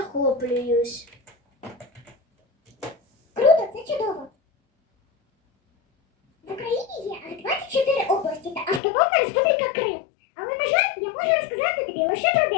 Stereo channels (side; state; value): right; drops out; at 8.8 s